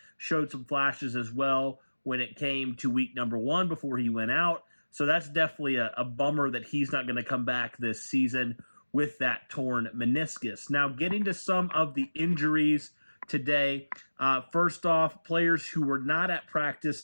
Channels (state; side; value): inverted; both; correlation -1.00